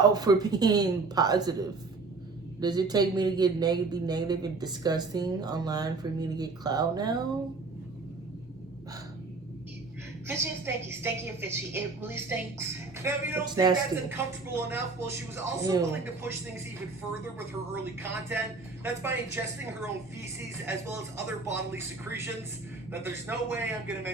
for being positive. Does it take me to get be negative and disgusting online for me to get clout now? Fishy and stinky, stinky and fishy. It really stinks. Now, if you don't It's think nasty. that's uncomfortable enough, well, she was also Ew. willing to push things even further with her early content. That's by ingesting her own feces as well as other bodily secretions that there's no way I'm going to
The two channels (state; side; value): quieter; left; 3.9 dB